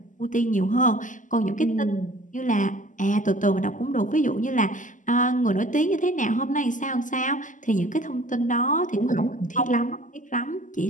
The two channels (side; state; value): right; late; 0.37 ms